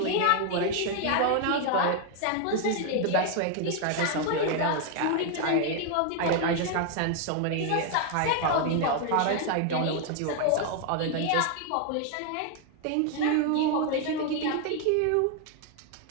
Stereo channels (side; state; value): both; different; correlation 0.00